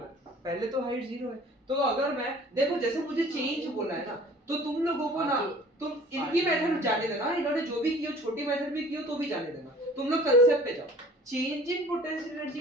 पहले तो हाइट 0 है, तो अगर मैं देखो जैसे मुझे चेंज बोला है ना, तो तुम लोगों को ना तुम इनकी मेथड जाने देना, इन्होंने जो भी किया छोटी मेथड भी किया तो भी जाने देना, तुम लोग कांसेप्ट पे जाओ। चेंज इन पोटेंशियल एनर्जी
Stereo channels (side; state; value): both; normal; correlation 0.49